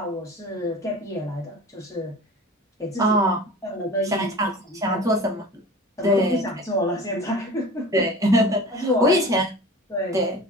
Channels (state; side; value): normal; both; correlation 0.38